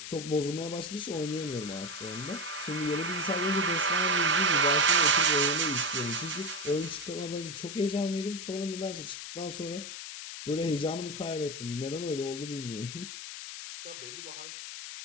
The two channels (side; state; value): left; noise; hiss, 9 dB below the sound